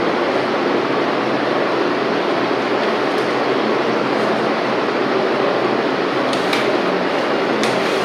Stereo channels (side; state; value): both; identical; correlation 1.00